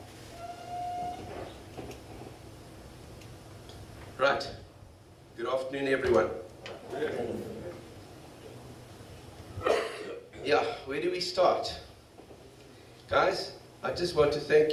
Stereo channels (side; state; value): both; identical; correlation 1.00